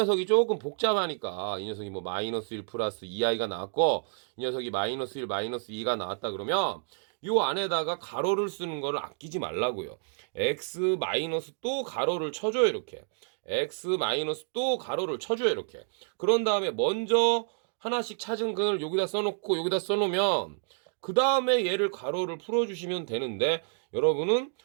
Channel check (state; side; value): silent; left; digital silence